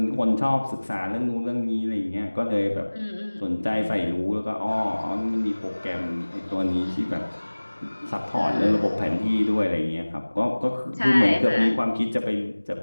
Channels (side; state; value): both; inverted; correlation -1.00